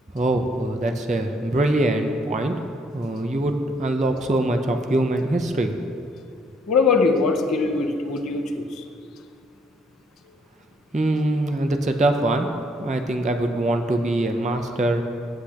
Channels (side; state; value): both; normal; correlation 0.68